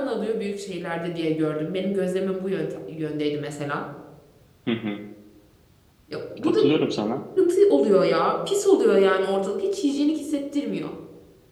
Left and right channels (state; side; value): identical; both; correlation 1.00